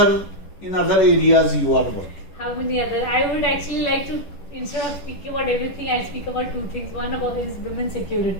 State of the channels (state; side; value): late; right; 10 ms